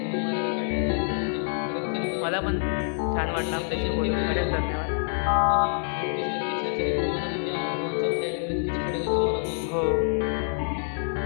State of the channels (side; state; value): right; silent; 61 dB below the other